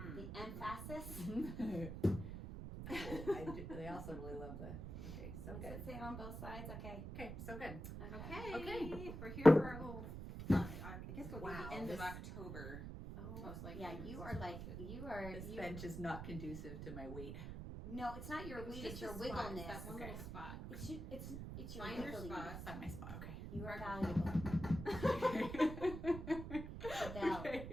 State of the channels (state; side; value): noise; right; rumble, 7 dB below the sound